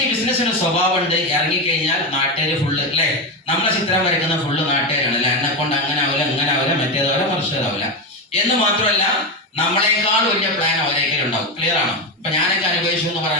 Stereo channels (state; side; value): normal; both; correlation 0.13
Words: ഈ ബിസിനസ്സിന് സ്വഭാവമുണ്ട്, ഇറങ്ങിക്കഴിഞ്ഞാൽ നാട്ടുകാർ ഫുള്ള് അല്ലെ, നമ്മളെ ചിത്രം വരയ്ക്കുന്ന ഫുള്ള് നാട്ടുകാരാണ് അല്ലെ, എന്നെ കൊണ്ട് അങ്ങനെ ആവില്ല ഇങ്ങനെ ആവില്ല മറ്റേതാവില്ല മറിച്ചതാവില്ല എന്ന് മാത്രമല്ല നമ്മളെക്കാൾ വലിയ പ്ലാൻ അവരേക്കലും ഉണ്ടാവും. ക്ലിയർ ആണോ? ഇപ്പൊ ഞാനൊക്കെ അനുഭവിച്ചു എന്ന്